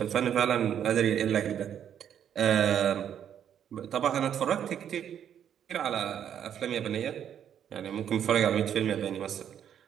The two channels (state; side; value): quieter; left; 9.2 dB